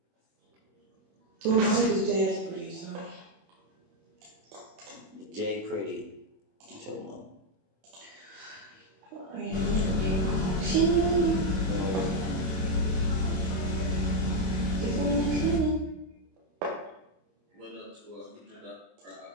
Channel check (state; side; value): late; left; 22 ms